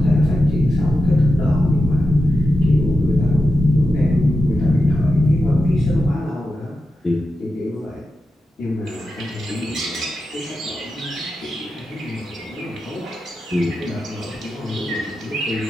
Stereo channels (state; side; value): normal; both; correlation 0.90